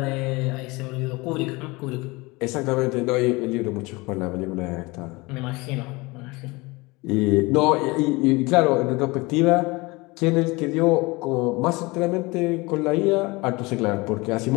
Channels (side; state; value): right; quieter; 24.0 dB